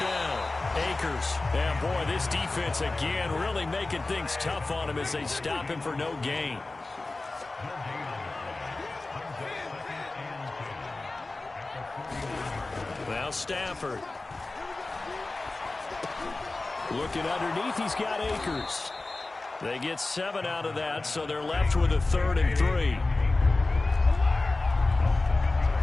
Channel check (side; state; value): right; quieter; 3.2 dB